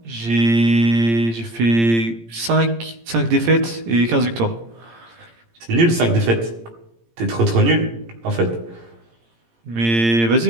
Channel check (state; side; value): late; left; 17 ms